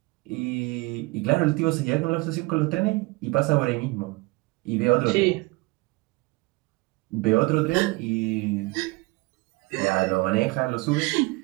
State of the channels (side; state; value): left; quieter; 24.3 dB